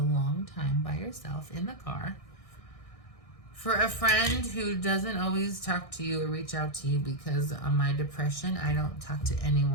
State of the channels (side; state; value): right; late; 1.6 ms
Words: time by yourself in the car. For a friend who doesn't always talk to you or reach out to you because of my depression, I don't talk to